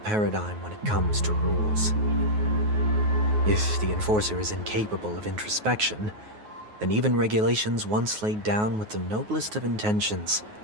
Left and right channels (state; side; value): late; left; 9.4 ms